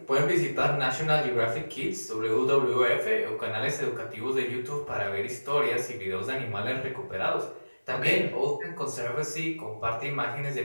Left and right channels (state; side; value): inverted; both; correlation -1.00